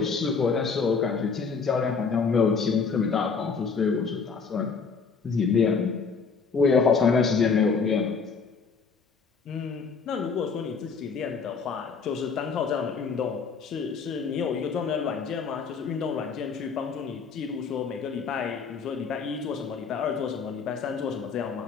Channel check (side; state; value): right; quieter; 5.3 dB